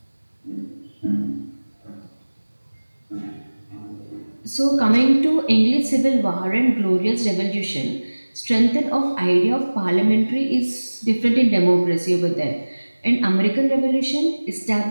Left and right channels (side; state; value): both; inverted; correlation -1.00